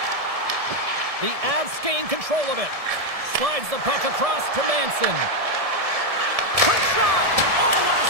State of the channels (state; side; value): late; left; 1.7 ms